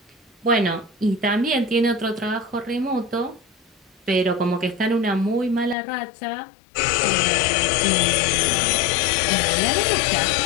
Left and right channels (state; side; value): drops out; right; at 5.8 s